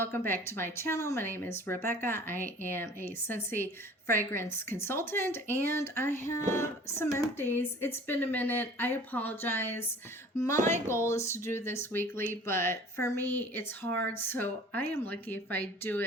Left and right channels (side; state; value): both; normal; correlation 0.46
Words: back to my channel. My name is Rebecca. I am a Scentsy fragrance consultant and I have some empties. It's been a minute. I apologize. My goal is to do this weekly, but for me it's hard, so I am lucky if I do